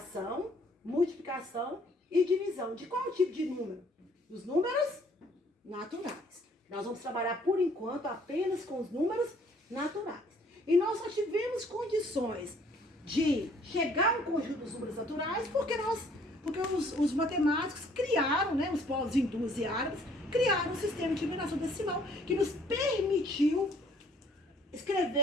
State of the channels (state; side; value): normal; both; correlation 0.60